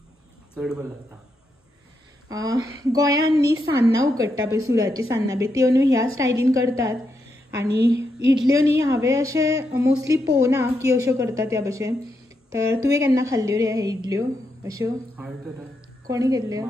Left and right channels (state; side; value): normal; both; correlation 0.82